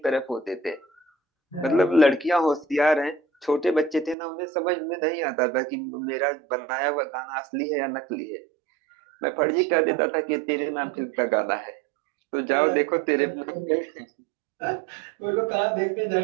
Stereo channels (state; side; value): drops out; left; at 4.2 s